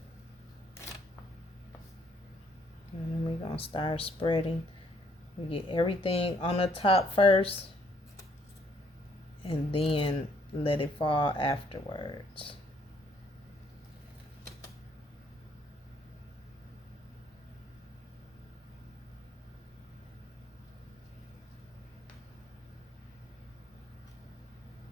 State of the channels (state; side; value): normal; both; correlation 0.67